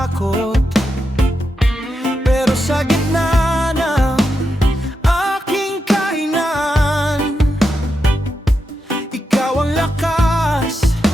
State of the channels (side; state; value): both; normal; correlation 0.86